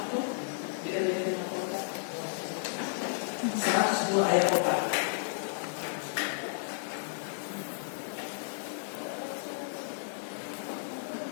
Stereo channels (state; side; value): silent; right; digital silence